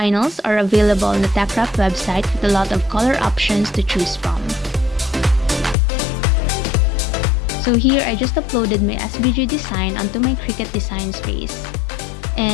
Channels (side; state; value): right; drops out; at 5.8 s